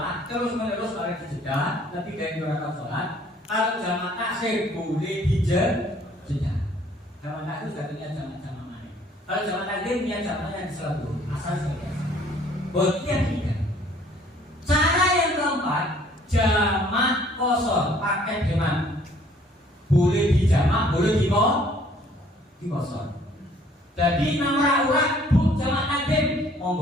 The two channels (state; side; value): normal; both; correlation 0.59